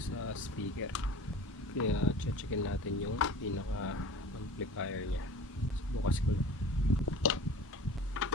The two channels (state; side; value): normal; both; correlation 0.40